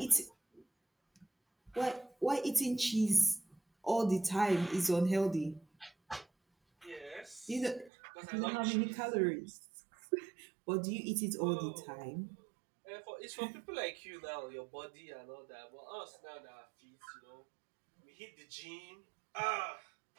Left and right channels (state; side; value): drops out; left; at 7.9 s